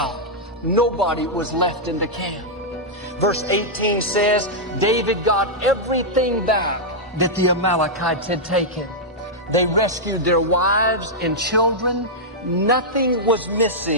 Nobody was left in the camp. Verse 18 says, David got everything back that the Amalekites had taken. They rescued their wives and children. Nothing was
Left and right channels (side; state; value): both; normal; correlation -0.07